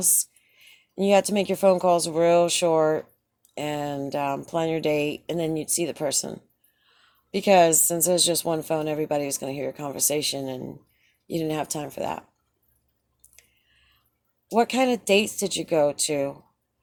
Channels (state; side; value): identical; both; correlation 1.00